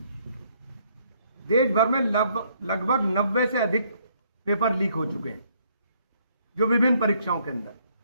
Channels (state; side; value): inverted; both; correlation -0.68